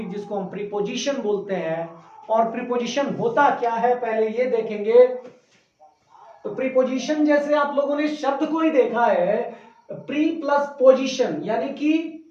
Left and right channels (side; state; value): both; identical; correlation 1.00